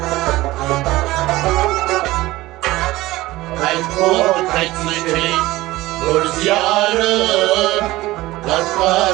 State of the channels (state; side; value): quieter; left; 18.3 dB